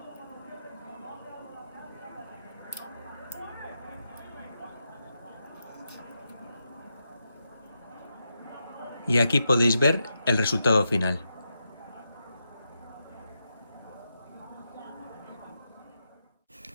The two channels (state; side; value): inverted; both; correlation -0.85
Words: Y aquí podéis ver el resultado final.